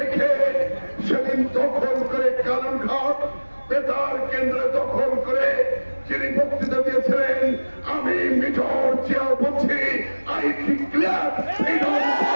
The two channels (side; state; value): both; inverted; correlation -1.00